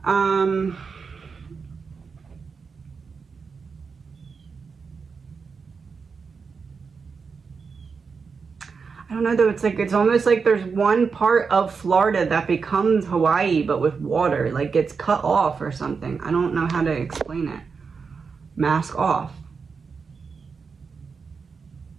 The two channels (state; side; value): quieter; left; 5.3 dB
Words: I don't know though, it's almost like there's one part of Florida that becomes Hawaii, but with water, like gets cut off or something. I don't know how to explain it. Mask off.